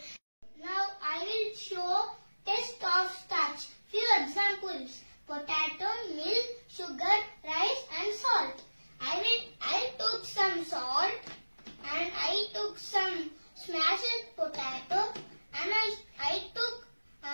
Now I will show test of starch. Few examples: potato, milk, sugar, rice and salt. I took some salt and I took some smashed potato and I took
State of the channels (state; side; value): inverted; both; correlation -1.00